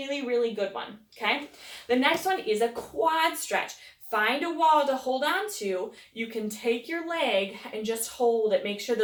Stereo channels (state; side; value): identical; both; correlation 1.00